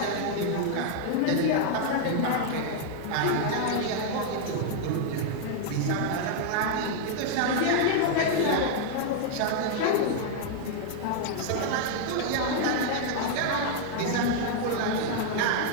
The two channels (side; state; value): both; different; correlation 0.00